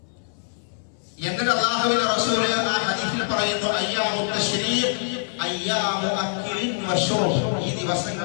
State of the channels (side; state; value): right; silent; 62 dB below the other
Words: എന്നിട്ട് അല്ലാഹുവിന്റെ റസൂൽ ആ ഹദീസിൽ പറയുന്നു, അയ്യാമു തശ്രീഖ് അയ്യാമു അക്ലിൻ വശുർബ്. ഈ